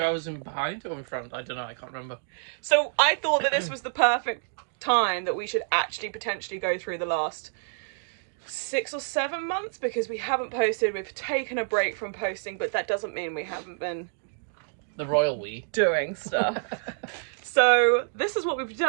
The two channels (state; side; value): silent; left; digital silence